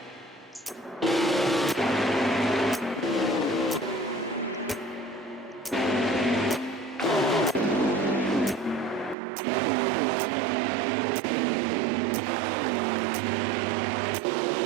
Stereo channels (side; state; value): left; drops out; at 9.2 s